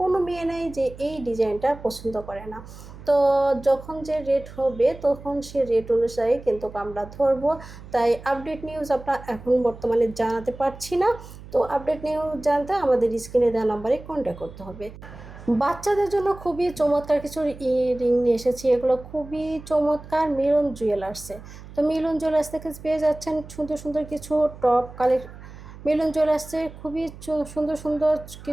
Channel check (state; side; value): noise; right; hum, 16 dB below the sound